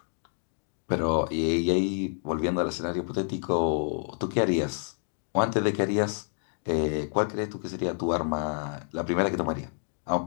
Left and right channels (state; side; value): silent; right; 59 dB below the other